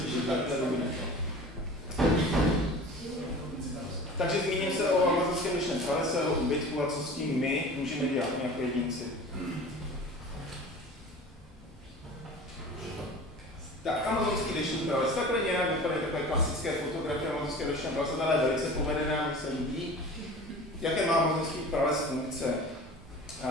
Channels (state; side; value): normal; both; correlation 0.39